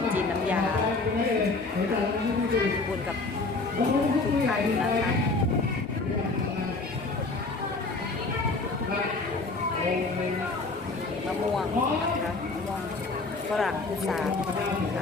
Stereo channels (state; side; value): quieter; right; 3.6 dB